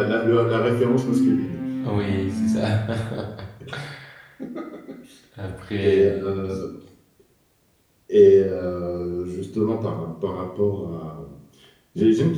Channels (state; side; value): identical; both; correlation 1.00